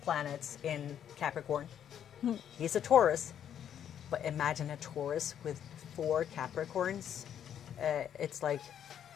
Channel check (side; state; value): right; quieter; 9.5 dB